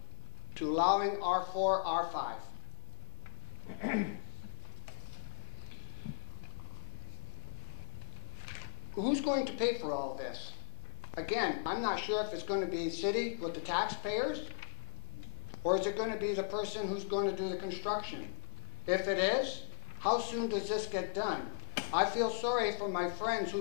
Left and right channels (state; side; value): silent; right; 52 dB below the other